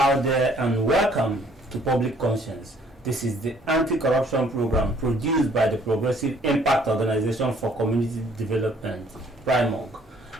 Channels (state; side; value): normal; both; correlation 0.61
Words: there and welcome to Public Conscience. This is the anti-corruption program produced by the Progressive Impact Organization for Community Development, PRIMOG.